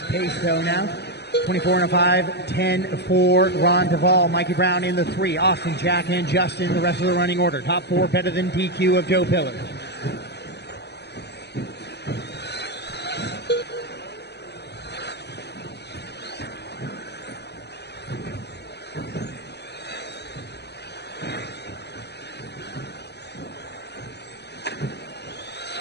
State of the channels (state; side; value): late; right; 0.49 ms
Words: pace though now. 24 and a 5-10 for Ron Duvall. Mikey Brown in the 3. Austin, Jack, and Justin, the rest of the running order. Top 4 better than DQ of Joe Pillars.